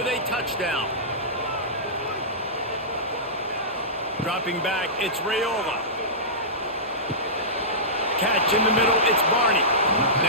a touchdown. Dropping back, it's Raiola. Catch in the middle, it's Barney.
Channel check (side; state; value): both; normal; correlation -0.18